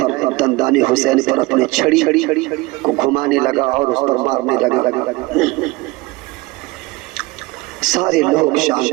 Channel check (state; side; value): quieter; left; 22.3 dB